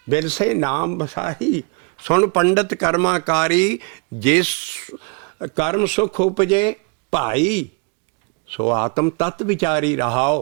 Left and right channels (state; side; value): quieter; left; 33.4 dB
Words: ਬਿਰਸੇ ਨਾਮ ਬਸਾਈ, ਸੁਣ ਪੰਡਤ ਕਰਮਾਕਾਰੀ, ਜਿਸ ਕਰਮ ਸੁਖ ਉਪਜੇ ਭਾਈ, ਸੋ ਆਤਮ ਤਤ ਵਿਚਾਰੀ